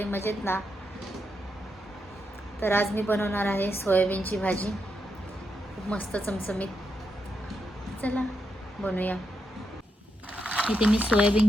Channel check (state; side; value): normal; both; correlation 0.83